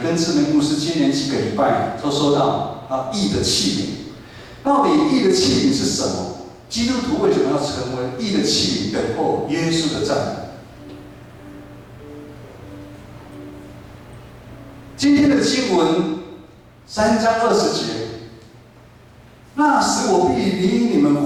志明牧师接连几个礼拜都收到义的器皿，到底义的器皿是什么？基督徒为什么要成为义的器皿，等候耶稣的再来？今天的经文3章20节。那时我必领你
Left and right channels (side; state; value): both; identical; correlation 1.00